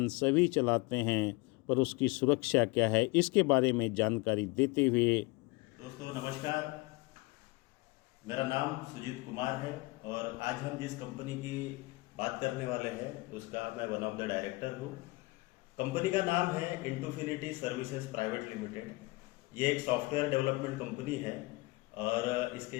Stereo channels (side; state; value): right; quieter; 23.5 dB